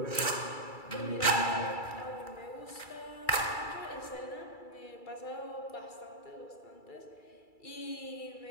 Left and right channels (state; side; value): late; right; 2.3 ms